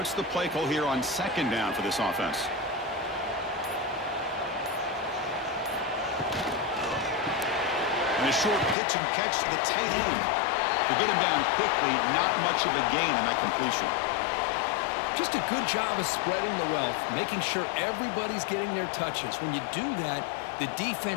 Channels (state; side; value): drops out; right; at 8.8 s